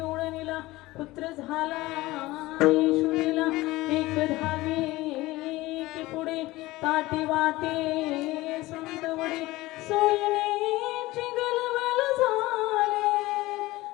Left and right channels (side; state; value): right; quieter; 19.0 dB